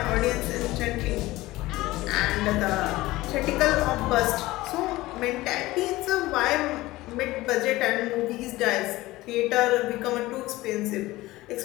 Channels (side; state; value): right; quieter; 18.5 dB